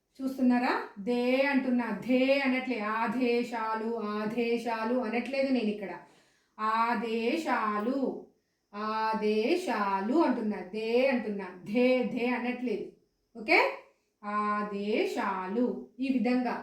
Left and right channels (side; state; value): both; identical; correlation 1.00